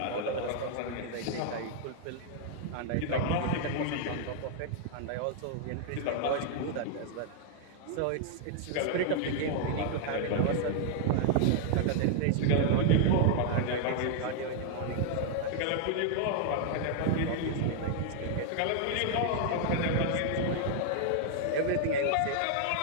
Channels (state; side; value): different; both; correlation -0.01